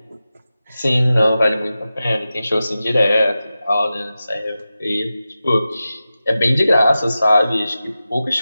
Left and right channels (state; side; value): inverted; both; correlation -0.94